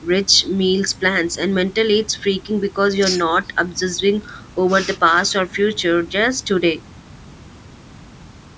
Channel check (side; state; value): both; identical; correlation 1.00